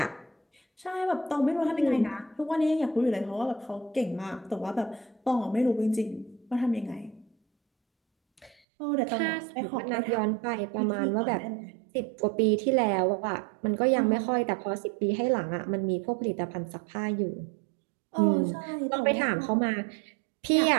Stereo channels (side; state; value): left; drops out; at 8.6 s